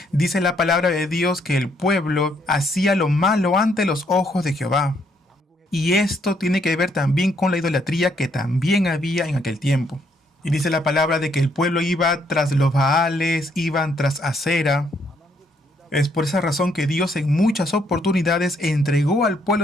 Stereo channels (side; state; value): both; normal; correlation 0.71